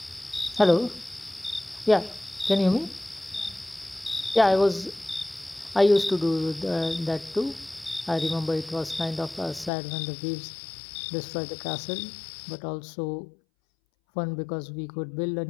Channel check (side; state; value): right; drops out; at 9.7 s